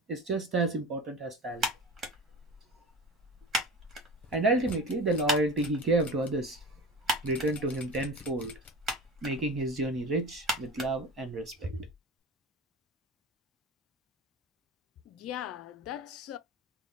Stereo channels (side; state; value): both; normal; correlation 0.33